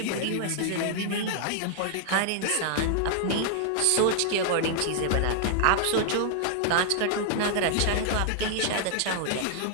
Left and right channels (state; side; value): different; both; correlation -0.01